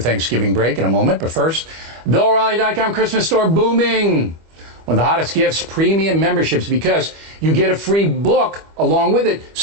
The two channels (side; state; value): left; late; 25 ms